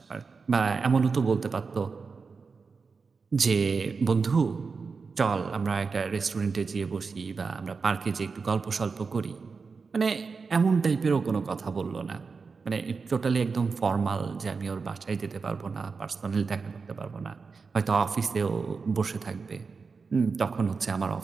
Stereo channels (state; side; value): quieter; left; 4.9 dB